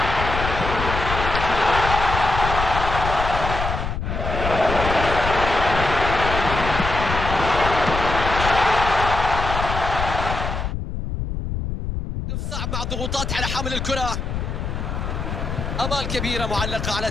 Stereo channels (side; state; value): left; noise; rumble, 4 dB below the sound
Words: صعب مع الضغوطات على حامل الكرة. امال كبيره معلقه على